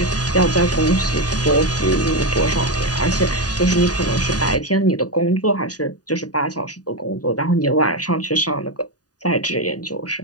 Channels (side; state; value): right; late; 0.68 ms